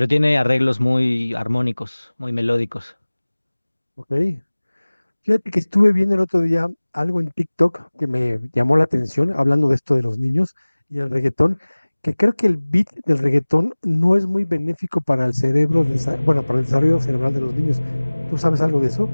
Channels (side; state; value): both; inverted; correlation -1.00